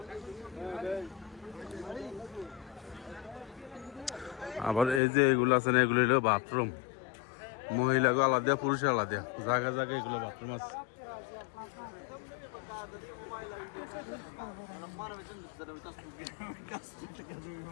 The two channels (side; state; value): right; drops out; at 5.0 s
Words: আবার এই যে এগুলো আছে না, এগুলো হলো বাথরুম, মহিলাকে আলাদা পুরুষের আলাদা, জায়গা জায়গায় এগুলো বাথরুম আছে।